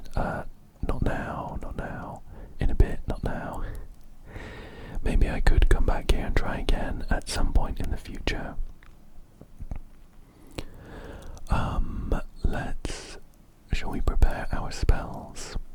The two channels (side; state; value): both; identical; correlation 1.00